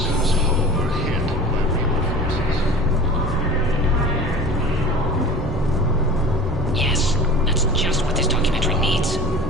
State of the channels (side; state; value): both; normal; correlation 0.39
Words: Yes, that's just what this documentary needs.